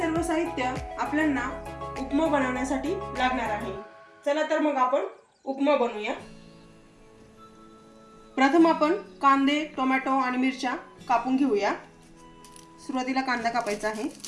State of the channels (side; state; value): both; identical; correlation 1.00